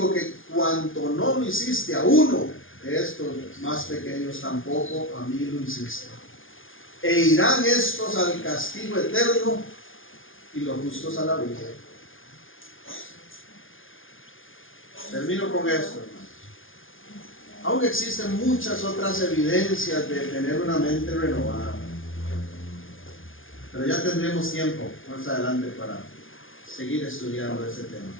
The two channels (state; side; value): late; right; 0.58 ms